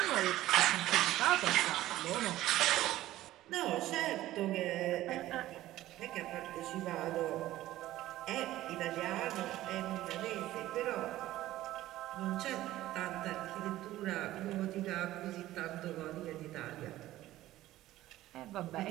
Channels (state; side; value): quieter; left; 15.2 dB